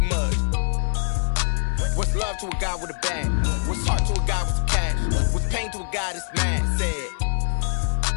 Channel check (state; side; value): silent; right; digital silence